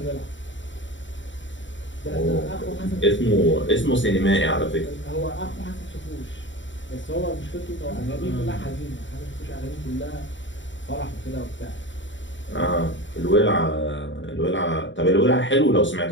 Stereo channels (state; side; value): late; right; 0.54 ms